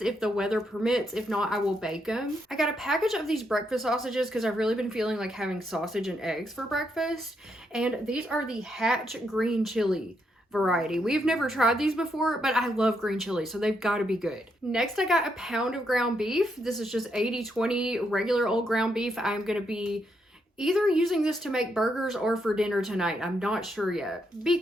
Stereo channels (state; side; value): normal; both; correlation 0.78